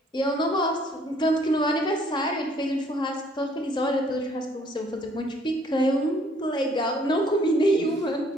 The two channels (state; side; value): normal; both; correlation 0.62